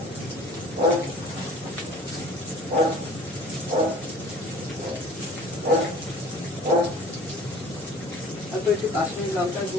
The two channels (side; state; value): both; normal; correlation 0.47